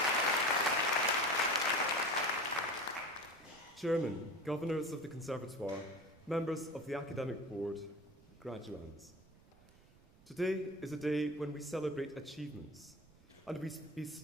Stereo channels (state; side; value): noise; right; rumble, 26 dB below the sound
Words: Chairman, Governors of the Conservatoire, members of the Academic Board, graduands. Today is a day when we celebrate achievements and we